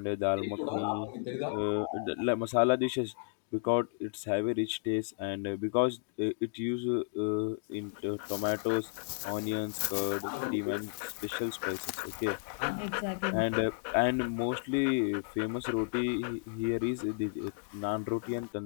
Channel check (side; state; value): right; silent; digital silence